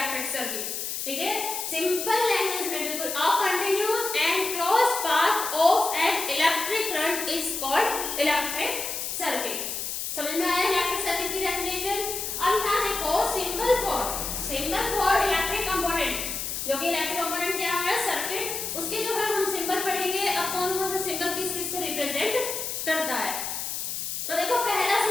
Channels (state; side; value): noise; left; hiss, 4 dB below the sound